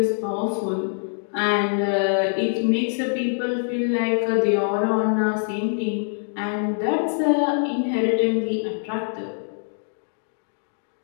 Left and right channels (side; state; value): right; silent; 62 dB below the other